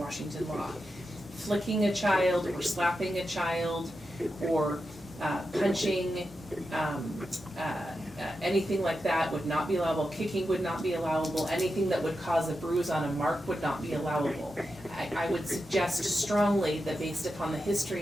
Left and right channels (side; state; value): both; normal; correlation 0.89